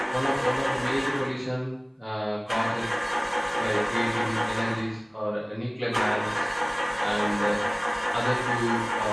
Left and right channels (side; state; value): both; identical; correlation 1.00